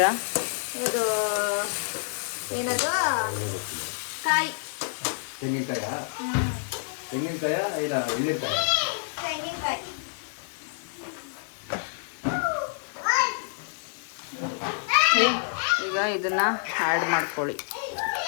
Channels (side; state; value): right; silent; digital silence